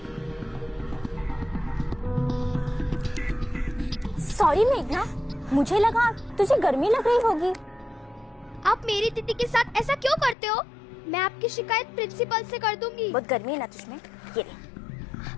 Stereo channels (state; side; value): drops out; right; at 10.4 s